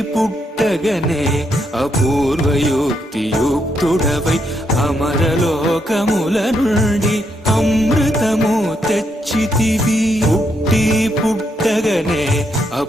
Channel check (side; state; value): both; normal; correlation 0.78